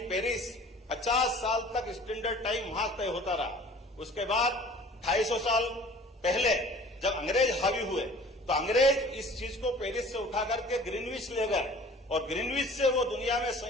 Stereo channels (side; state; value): both; normal; correlation 0.47